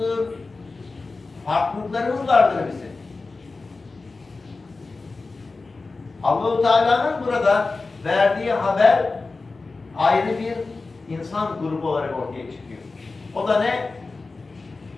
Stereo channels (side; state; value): right; quieter; 3.8 dB